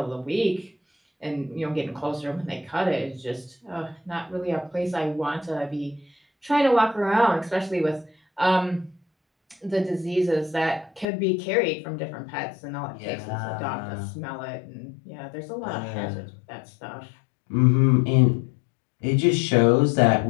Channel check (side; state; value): right; drops out; at 11.1 s